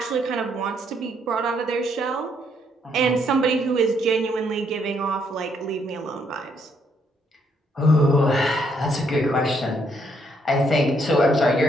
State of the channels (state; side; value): normal; both; correlation 0.72